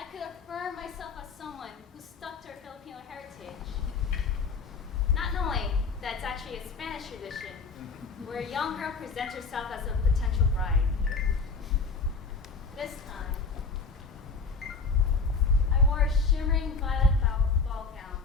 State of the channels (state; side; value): quieter; right; 4.6 dB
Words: could affirm myself as someone who stuck to her Filipino heritage. Not knowing that it's actually a Spanish tradition, where a young girl presents herself as a potential bride. This time, I wore a shimmering violet ball gown